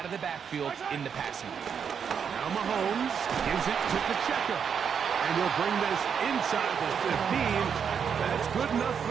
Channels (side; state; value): left; quieter; 7.1 dB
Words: of the backfield in the passing game. Now Mahomes gives it to Pacheco. And he'll bring this inside the 15. That's good enough